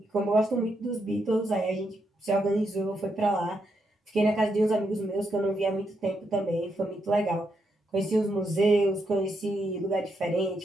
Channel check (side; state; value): both; normal; correlation 0.81